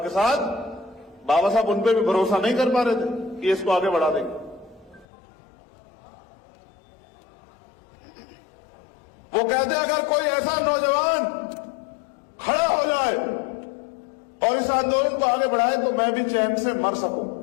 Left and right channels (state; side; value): drops out; right; at 5.1 s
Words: के साथ, बाबा साहब उन पे भी भरोसा नहीं कर पा रहे थे कि इसको आगे बढ़ा देंगे। वो कहते अगर कोई ऐसा नौजवान खड़ा हो जाए और इस आंदोलन को आगे बढ़ाए तो मैं भी चैन से मर सकूं।